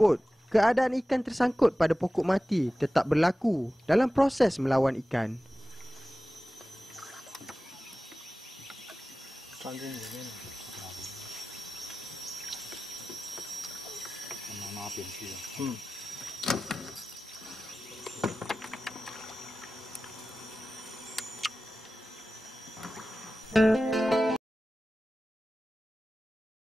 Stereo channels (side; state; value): both; normal; correlation 0.95